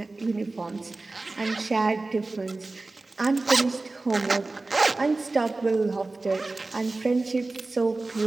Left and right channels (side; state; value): left; quieter; 3.3 dB